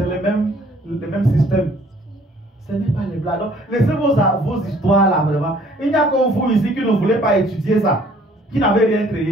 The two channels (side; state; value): both; normal; correlation 0.58